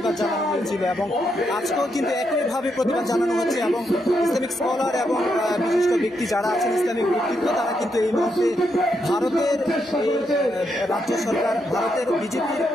জানানো হয়েছিল এবং আজকেও কিন্তু একইভাবে প্রতিবাদ জানানো হচ্ছে। এবং ইসলামিক স্কলার এবং বিশিষ্ট ব্যক্তি যারা আছেন, ইসলামিক ব্যক্তিত্ব, তারা কিন্তু এই মুহূর্তে ভারতের রাজ্য সরকার, ভারতের বিজেপির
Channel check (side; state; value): both; normal; correlation 0.80